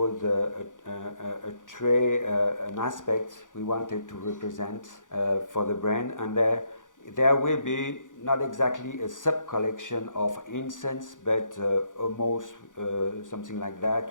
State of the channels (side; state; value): right; late; 0.87 ms